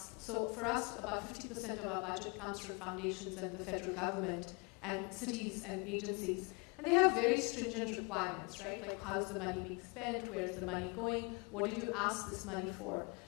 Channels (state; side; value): quieter; right; 31.0 dB